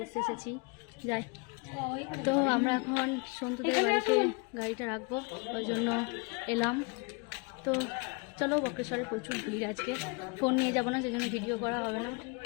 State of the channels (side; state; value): right; quieter; 31.3 dB